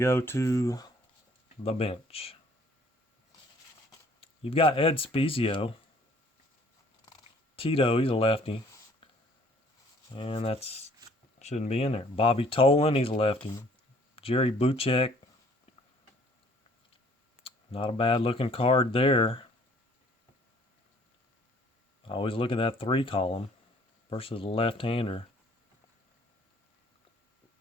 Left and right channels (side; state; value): both; normal; correlation 0.57